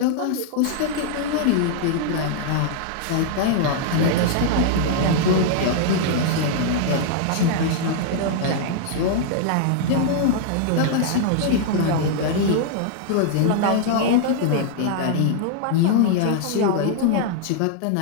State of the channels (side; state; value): both; different; correlation -0.01